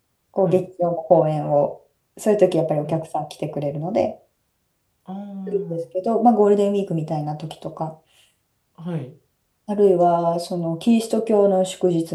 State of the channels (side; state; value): both; identical; correlation 1.00